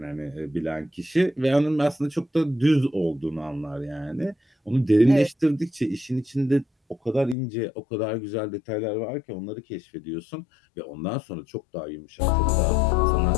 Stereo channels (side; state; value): right; drops out; at 7.4 s